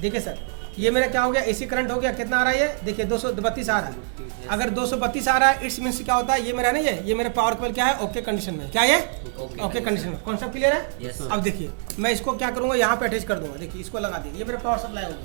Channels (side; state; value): left; silent; 55 dB below the other